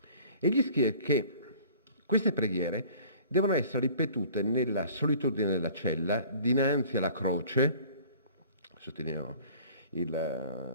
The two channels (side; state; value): both; inverted; correlation -0.48